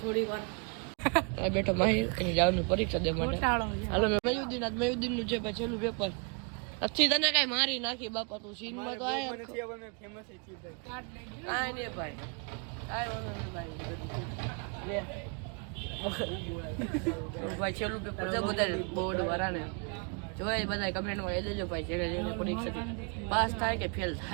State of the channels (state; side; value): quieter; left; 36.9 dB